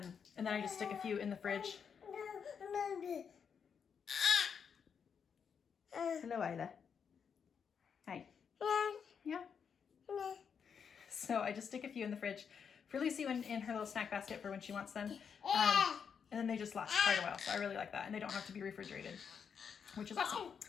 then I just stick a few in the fridge. Hello, Isla. Hi. Yeah. So I just stick a few in the fridge for Lucy in her little snack basket for when she wants them. And then they just last quite a while, so I really like that. And they don't have to be refrigerated, which is awesome.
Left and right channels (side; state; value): right; quieter; 6.8 dB